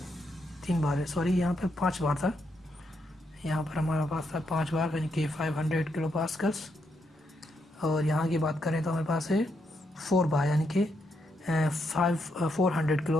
3 बार, सॉरी यहाँ पे 5 बार था, यहाँ पर हमारे पास था 5 बार यानी कि 500 किलो पास्कल्स। और यहाँ की बात करें तो हमारे पास है 4 बार यानी कि 400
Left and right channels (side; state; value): both; normal; correlation 0.79